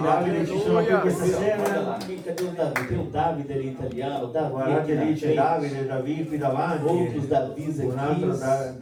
Davide ci sono qui questa Olha sera? lá, cadê o Davi? Tem o David ali italiano, Davi aqui Guardate na lì c'è frente, Davide, David qui davanti, outros Davis un altro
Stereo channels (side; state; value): both; identical; correlation 1.00